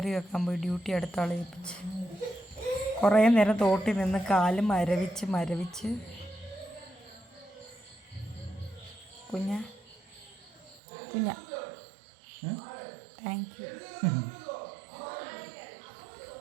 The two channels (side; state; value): left; drops out; at 10.8 s